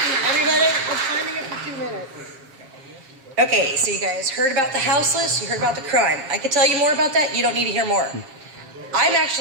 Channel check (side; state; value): left; late; 7.4 ms